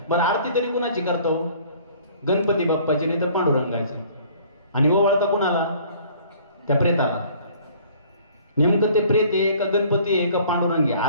बरं आरती तरी कुणाची करतो? गणपती बाप्पाची, नाही तर पांडुरंगाची. आणि ओवाळता कुणाला? त्या प्रेताला. नेमकं ते प्रेत आहे का गणपती आहे का पांडुरंग आहे?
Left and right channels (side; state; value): both; inverted; correlation -0.54